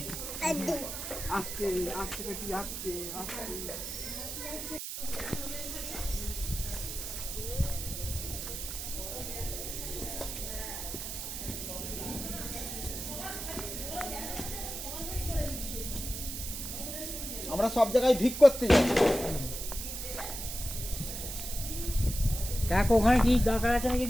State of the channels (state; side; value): noise; right; hiss, 6 dB below the sound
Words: আস্তে আস্তে দেখি, আস্তে আস্তে। আমরা সব জায়গায় ভিক করতে যাই। দেখ ওখানে কি দরকার আছে নাকি